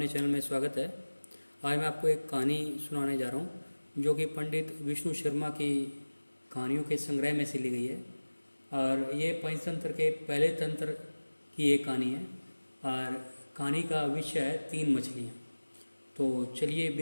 चैनल में स्वागत है। आज मैं आपको एक कहानी सुनाने जा रहा हूँ जो कि पंडित विष्णु शर्मा की कहानियों के संग्रह में से ली गई है। और ये पंचतंत्र के पहले तंत्र की एक कहानी है। और कहानी का विषय है 3 मछलियाँ। तो चलिए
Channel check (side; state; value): both; inverted; correlation -1.00